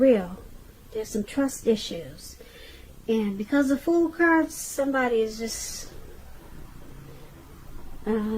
There's some trust issues. And because of Fool cards, somebody is just,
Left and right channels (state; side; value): identical; both; correlation 1.00